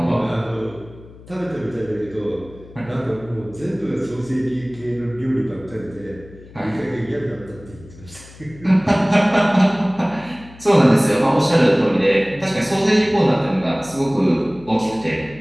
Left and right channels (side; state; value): left; noise; hum, 20 dB below the sound